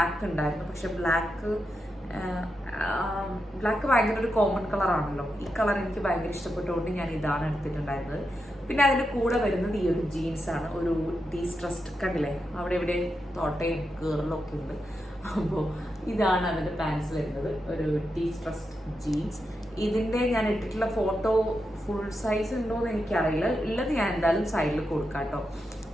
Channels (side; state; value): both; normal; correlation 0.87